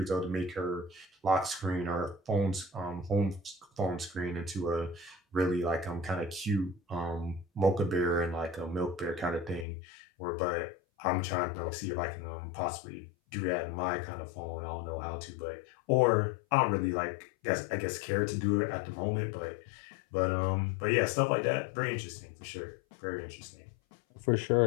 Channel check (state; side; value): drops out; right; at 9.7 s